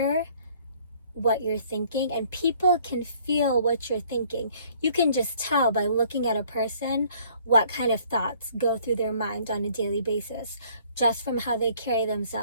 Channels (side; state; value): both; inverted; correlation -0.58